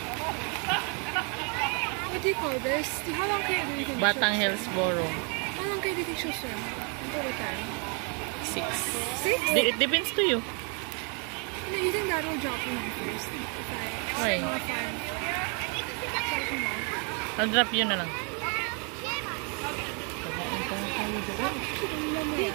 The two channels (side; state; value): left; quieter; 36.3 dB